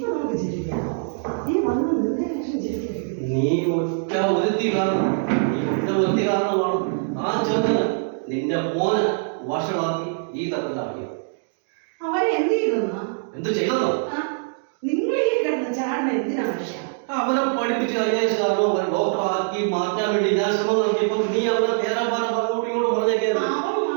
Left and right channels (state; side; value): silent; left; digital silence